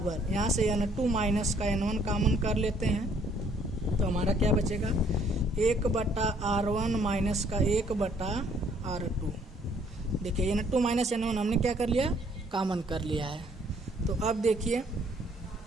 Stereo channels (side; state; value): both; normal; correlation 0.63